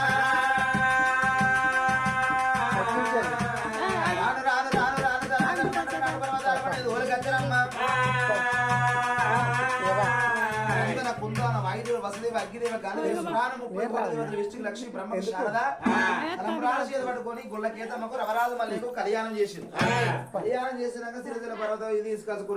లక్ష్మి బ్రహ్మ శారద పట్టుకొని గుళ్ళ కేతమ్మకు రవరాజు మల్లికు కళ్యాణం చేసింది కళ్యాణం చేసినాక సిరిసిల పర్వతం ఇది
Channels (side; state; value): both; identical; correlation 1.00